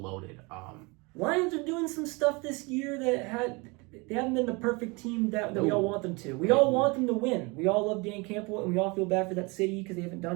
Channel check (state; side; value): quieter; left; 27.5 dB